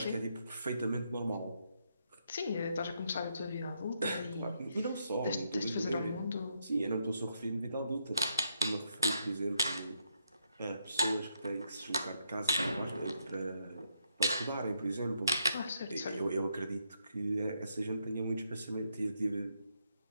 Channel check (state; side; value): inverted; both; correlation -0.77